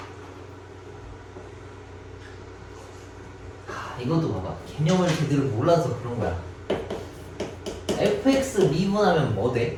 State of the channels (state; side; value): identical; both; correlation 1.00